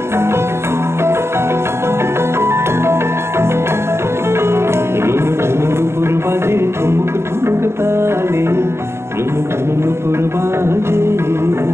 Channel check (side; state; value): left; late; 0.12 ms